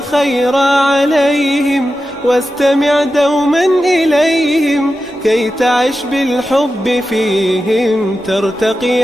عليهم، واستمع دوما إليهم، كي تعش بالحب فيهم ترتقي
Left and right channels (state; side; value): normal; both; correlation 0.91